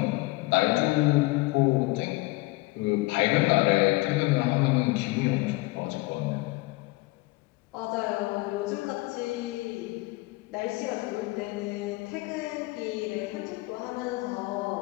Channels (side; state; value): right; quieter; 22.5 dB